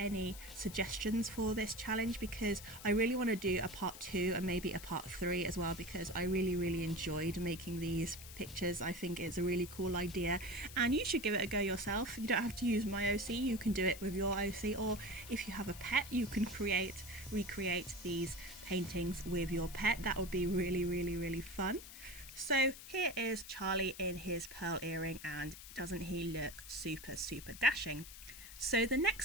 suggestions for this challenge, because I really want to do a part 2 and maybe a part 3 as well, because I really enjoyed making these pictures. I think it's a really cool idea, and you should give it a go yourself. You don't have to use my OC, you can do it with your OC, or if you have a pet you can recreate these paintings with your pet. That would be really fun. So here is Charlie in his pearl earring, and doesn't he look super dashing? So the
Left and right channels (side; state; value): left; noise; hiss, 14 dB below the sound